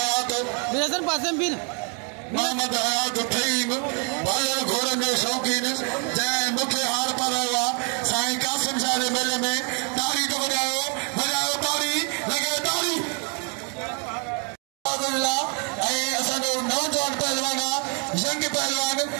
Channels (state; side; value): quieter; left; 38.4 dB